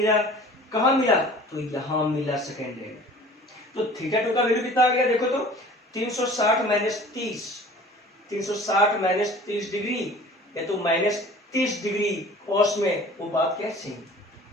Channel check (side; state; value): both; normal; correlation 0.45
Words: कहां मिला? तो यहां मिला सेकंड एंड। तो थीटा 2 का वैल्यू कितना आ गया? देखो तो 360 माइनस 30, 360 माइनस 30 डिग्री, या तो माइनस 30 डिग्री कॉस में, वो बात क्या सेम,